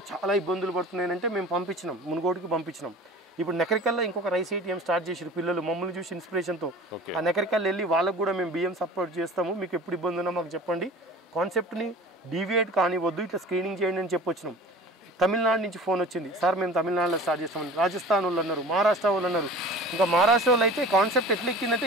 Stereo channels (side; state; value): both; normal; correlation 0.41